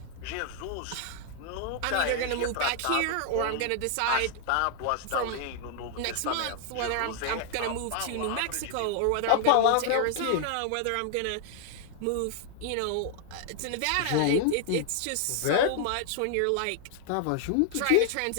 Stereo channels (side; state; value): both; different; correlation 0.00